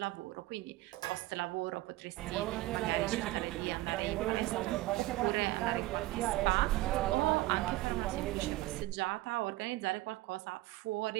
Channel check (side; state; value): left; quieter; 18.2 dB